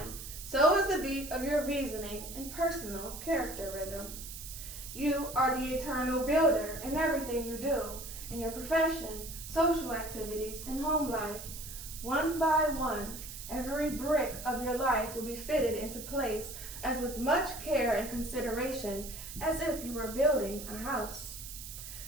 so is the beat of your reasoning and personal character rhythm. You are the eternal builder in everything you do, in your profession, social activities, and home life. One by one, every brick of your life will be fitted into place as with much care and consideration as if you were building a house.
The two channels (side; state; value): right; noise; hiss, 11 dB below the sound